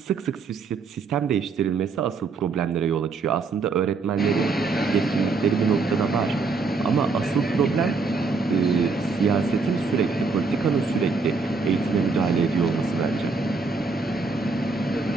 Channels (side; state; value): left; quieter; 4.3 dB